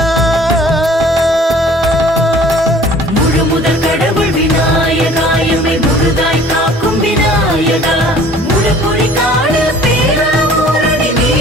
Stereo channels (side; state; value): both; normal; correlation 0.51